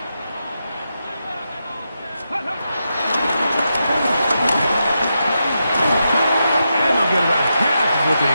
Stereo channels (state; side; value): inverted; both; correlation -0.86